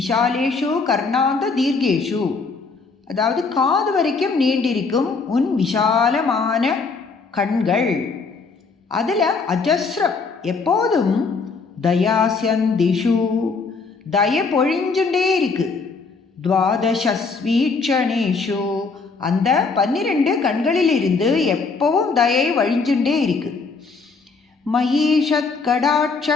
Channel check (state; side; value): quieter; right; 4.5 dB